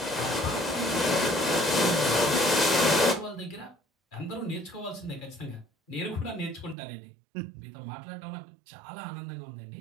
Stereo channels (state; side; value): drops out; left; at 6.8 s